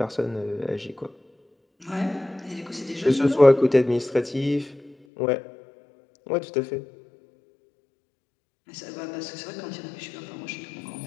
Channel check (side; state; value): right; drops out; at 5.0 s